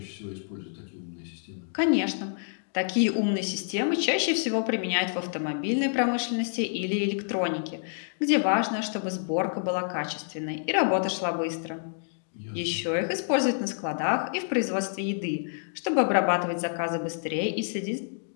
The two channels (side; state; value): right; silent; digital silence